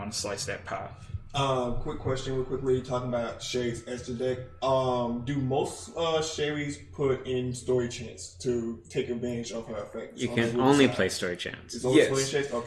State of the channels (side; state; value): both; identical; correlation 1.00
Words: to slice that pie. Quick question, real quickly, talking about Sherry's extra deck. Do most Sherry's put in story chance to take advantage of her effect? You can only play story chance. It's only story chance?